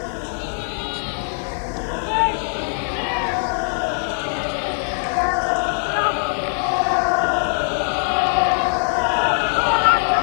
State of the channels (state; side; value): silent; right; 65 dB below the other